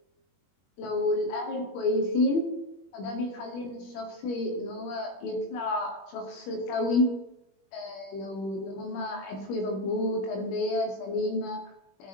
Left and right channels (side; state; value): right; late; 21 ms